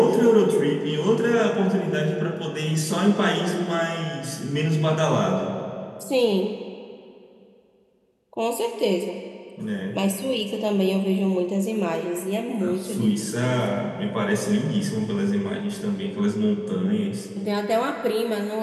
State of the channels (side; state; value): both; identical; correlation 1.00